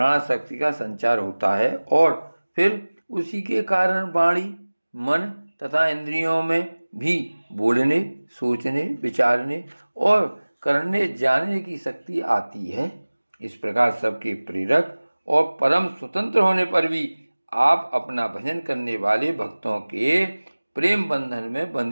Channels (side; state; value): both; inverted; correlation -1.00